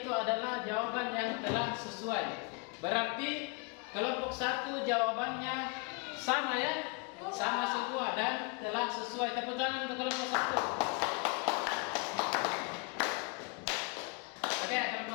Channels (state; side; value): quieter; right; 31.3 dB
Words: adalah jawaban yang telah sesuai. Berarti kelompok 1 jawabannya sama ya? Sama semua dan telah sesuai. Tepuk tangan untuk kelompok 1. Oke,